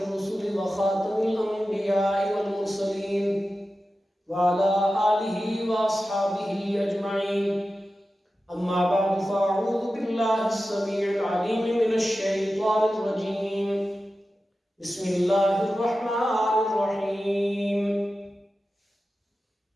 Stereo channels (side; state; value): both; normal; correlation 0.93